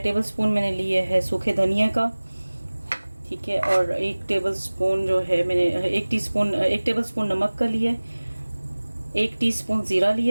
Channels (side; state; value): both; inverted; correlation -1.00